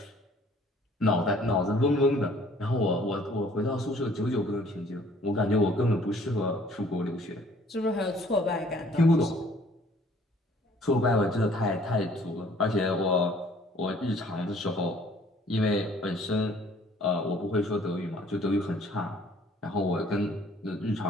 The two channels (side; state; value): both; normal; correlation 0.57